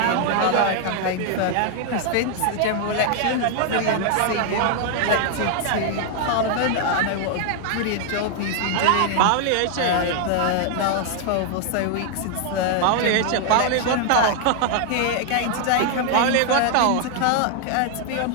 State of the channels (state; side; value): different; both; correlation 0.00